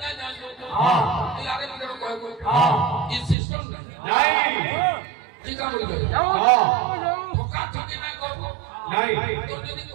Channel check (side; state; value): left; drops out; at 3.4 s